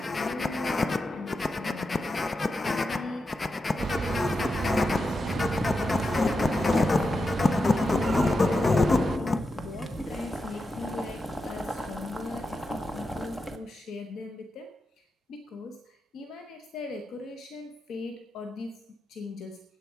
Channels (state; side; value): normal; both; correlation 0.88